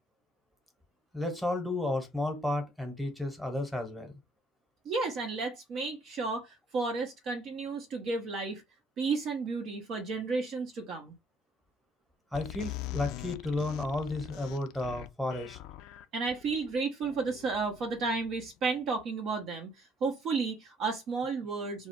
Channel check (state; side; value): normal; both; correlation 0.66